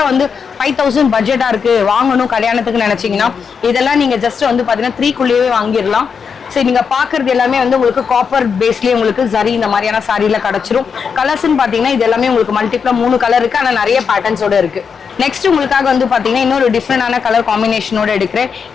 வந்து 5000 பட்ஜெட்டா இருக்கு வாங்கணும் கல்யாணத்துக்கு நினைச்சீங்கன்னா இதெல்லாம் நீங்க ஜஸ்ட் வந்து பாத்தீங்கன்னா 3 வாங்கிடலாம். சரி, நீங்க பாக்குறது எல்லாமே வந்து உங்களுக்கு காப்பர் பேஸ்லயே உங்களுக்கு ஜரி இந்த மாதிரியான சாரியில கிடைச்சிரும். கலர்ஸ்ன்னு பாத்தீங்கன்னா இது எல்லாமே உங்களுக்கு மல்டிப்ளா 3 கலர் இருக்கு, ஆனா நிறைய பேட்டர்ன்ஸோட இருக்கு. நெக்ஸ்ட் உங்களுக்காக வந்து பாத்தீங்கன்னா இன்னொரு டிஃப்ரெண்டான கலர் காம்பினேஷனோட எடுக்கிறேன்.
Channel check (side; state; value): right; quieter; 6.2 dB